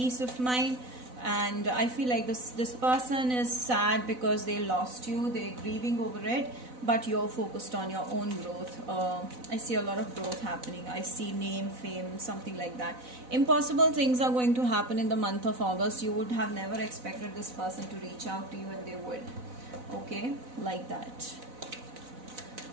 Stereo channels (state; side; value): late; left; 4.0 ms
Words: of mind. And I feel like this person is sad because they lost you. They're grieving over it, but you're focused on your own growth. I see a lot of growth happening. I see name, fame, something like that. Impossible things are going to happen in the month of August. You would have never expected this person to reach out to you, and they would. Okay, like that.